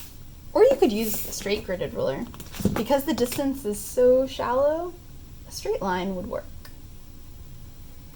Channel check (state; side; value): identical; both; correlation 1.00